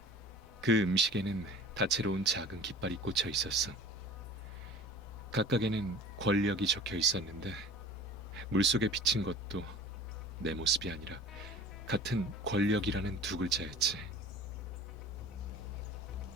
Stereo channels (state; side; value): normal; both; correlation 0.41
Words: 그 음식에는 다채로운 작은 깃발이 꽂혀 있었어. 각각에는 권력이 적혀 있었는데 물속에 비친 것도 내 모습이 아니라 같은 권력이라는 두 글자였지.